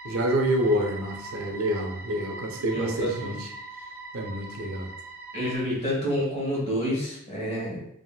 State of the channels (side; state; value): both; normal; correlation 0.34